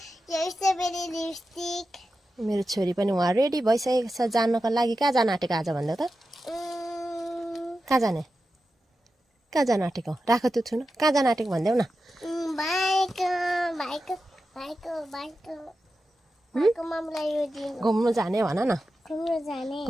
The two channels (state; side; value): normal; both; correlation 0.91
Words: मेरो छोरी पनि उहाँ रेडी भइसकेको छ जानको लागि। कहाँ जान आँटेको आज भन्दा त? कहाँ जाने आँटेको? राख त्यो छुन। कहाँ जान आँटेको भन्देऊ न। घुम्नु जाने भन न